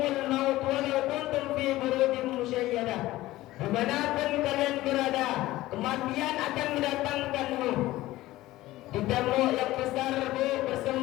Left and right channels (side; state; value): right; quieter; 16.9 dB